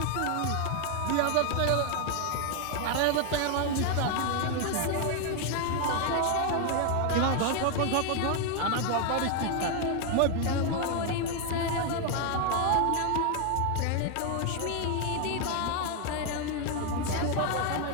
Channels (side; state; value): both; different; correlation 0.01